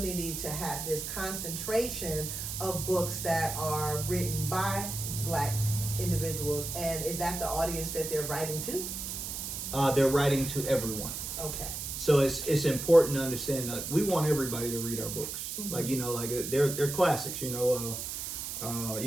to have this concentration of books that are written by Black individuals, and is that the audience that they're writing to? They're writing to everyone. Okay. So it's important to understand that we want everybody to read our books. Like, you know, like they're classics. You know,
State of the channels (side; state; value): right; noise; hiss, 5 dB below the sound